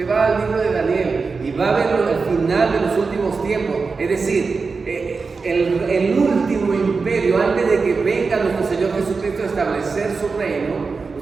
va al libro de Daniel y va a ver al final de los últimos tiempos, es decir, el último imperio, antes de que venga nuestro Señor Jesucristo a establecer su reino,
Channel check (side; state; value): left; quieter; 4.6 dB